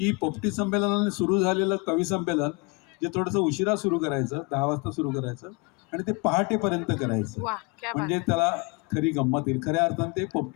पोपटी संमेलनाने सुरू झालेलं कवी संमेलन जे थोडंसं उशिरा सुरू करायचं, 10 वाजता सुरू करायचं आणि ते पहाटेपर्यंत करायचं, वाह क्या बात म्हणजे है. त्याला खरी गंमत येईल. खऱ्या अर्थाने ते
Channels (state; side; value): quieter; right; 28.9 dB